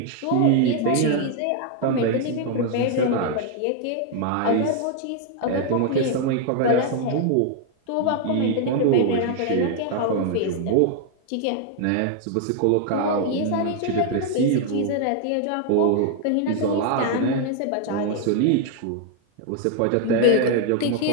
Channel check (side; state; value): both; different; correlation 0.00